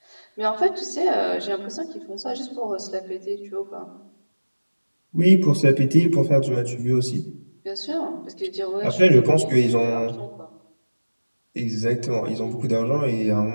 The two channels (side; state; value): both; inverted; correlation -1.00